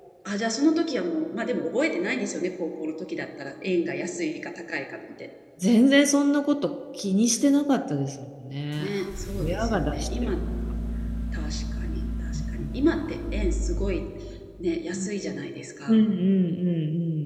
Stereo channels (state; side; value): identical; both; correlation 1.00